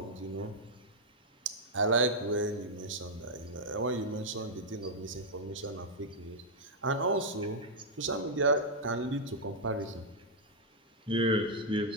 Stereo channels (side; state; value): both; normal; correlation -0.04